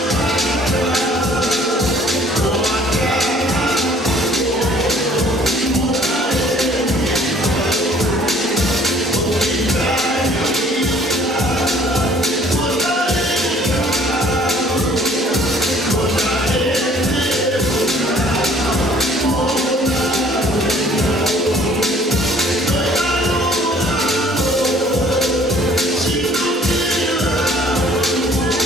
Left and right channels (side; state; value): both; normal; correlation 0.56